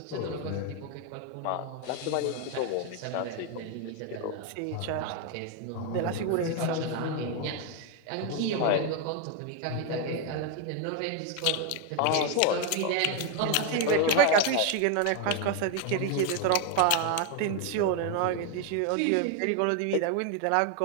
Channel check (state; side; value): different; both; correlation 0.01